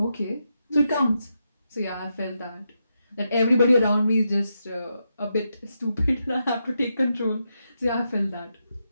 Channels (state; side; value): inverted; both; correlation -0.85